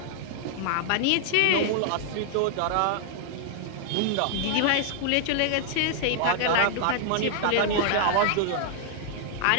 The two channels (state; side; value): different; both; correlation 0.00